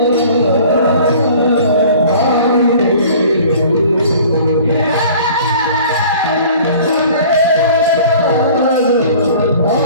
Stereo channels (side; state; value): both; inverted; correlation -0.48